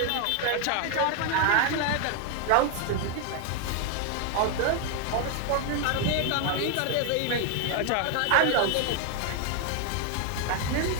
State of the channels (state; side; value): different; both; correlation 0.00